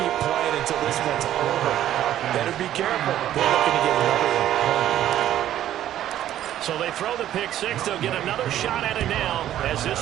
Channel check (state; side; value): quieter; left; 12.0 dB